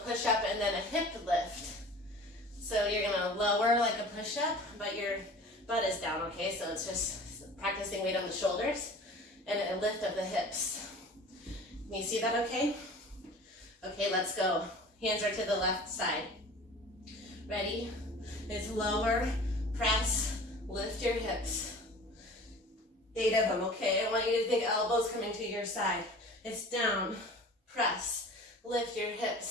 and then a hip lift. So you're gonna lower like a push-up, but your butt is down, okay? So it's just practicing weight on the shoulders and a lift of the hips. Can you see that okay? Okay, let's go. Hands are to the left side. Ready? It's lower, press, lift your hips. 8 of them, okay? I want you to think elbows coming to your side. It's down, press, lift your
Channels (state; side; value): normal; both; correlation 0.42